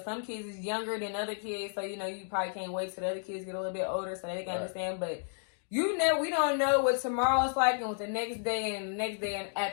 some kids is younger than other kids, so you probably can't wait till the other kids get a little bit older so they can understand. But we don't know what tomorrow's like and what the next day and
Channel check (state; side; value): silent; right; digital silence